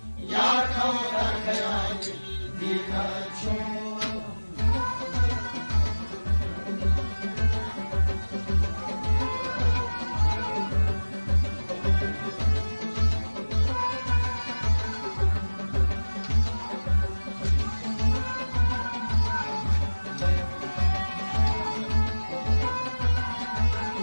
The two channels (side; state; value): both; inverted; correlation -1.00